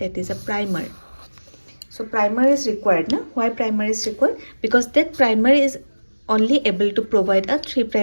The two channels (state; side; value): inverted; both; correlation -1.00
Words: is a primer. So primer is required, no? Why primer is required? Because that primer is only able to provide a 3